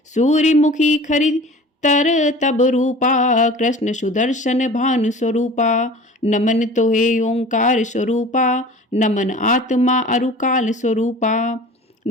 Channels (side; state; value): both; normal; correlation 0.41